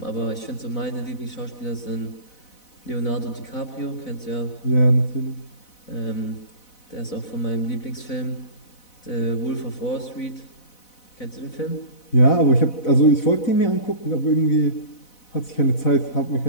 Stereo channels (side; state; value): right; late; 4.0 ms